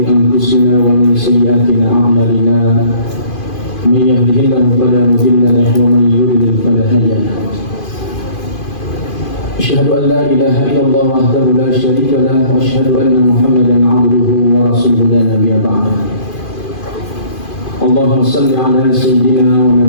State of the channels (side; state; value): right; late; 2.5 ms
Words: anfusina wa min sayyiati a'malina. من يهده الله فلا مضل له ومن يضلل فلا هادي له. أشهد أن لا إله إلا الله وحده لا شريك له وأشهد أن محمدا عبده ورسوله لا نبي بعده. اللهم صل على سيدنا